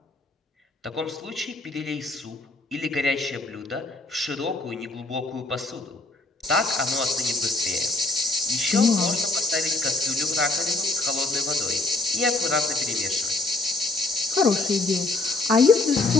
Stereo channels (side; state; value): right; quieter; 3.0 dB